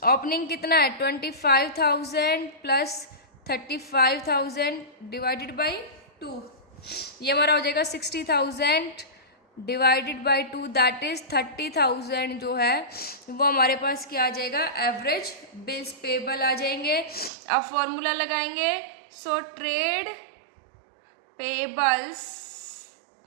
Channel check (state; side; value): drops out; left; at 17.3 s